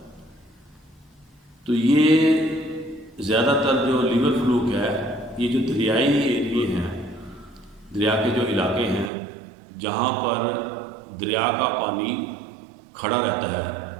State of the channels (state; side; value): drops out; left; at 9.1 s